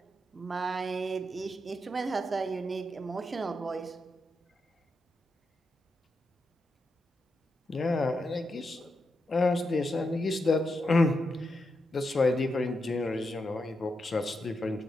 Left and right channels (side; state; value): both; normal; correlation 0.85